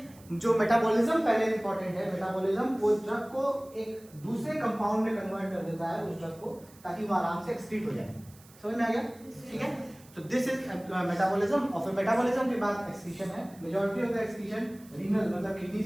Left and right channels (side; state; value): right; noise; hiss, 25 dB below the sound